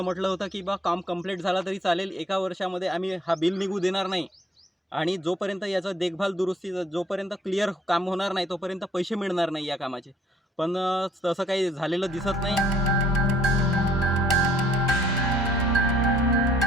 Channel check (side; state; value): both; normal; correlation 0.62